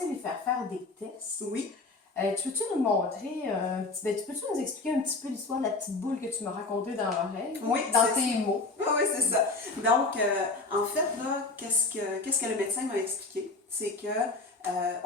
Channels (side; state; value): right; quieter; 3.5 dB